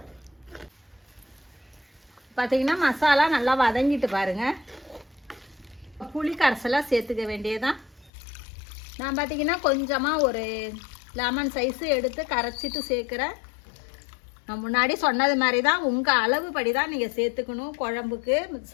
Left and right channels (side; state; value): right; drops out; at 8.1 s